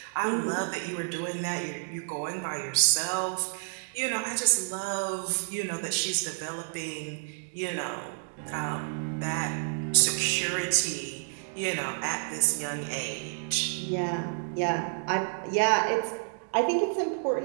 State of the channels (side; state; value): left; silent; digital silence